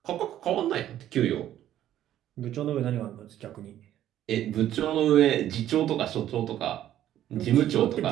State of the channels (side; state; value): left; quieter; 12.0 dB